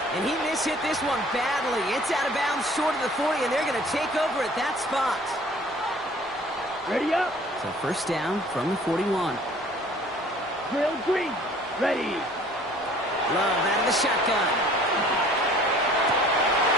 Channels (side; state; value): right; noise; hum, 27 dB below the sound